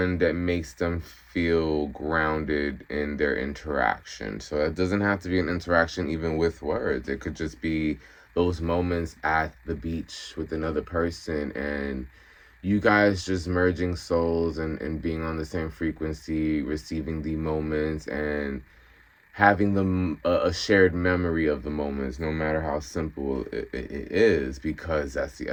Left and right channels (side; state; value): both; identical; correlation 1.00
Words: that makes them feel grounded in their interaction. So it doesn't have to be an interaction even with words. It could just be those moments at the beach with another person, and you guys just merging souls and being on the same frequency, receiving the moments, and having them a shared memory of the moments, no matter how simple it is, because that's the